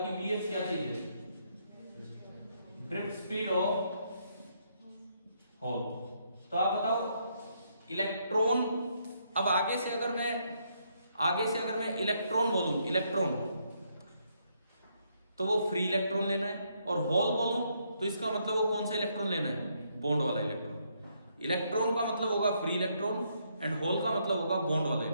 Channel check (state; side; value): inverted; both; correlation -0.74